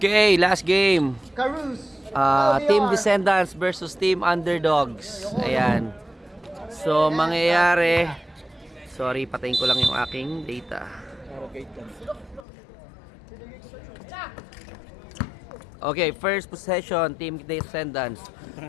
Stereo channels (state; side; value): drops out; right; at 12.5 s